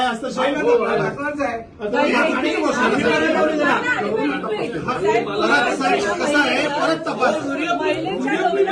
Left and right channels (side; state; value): both; identical; correlation 1.00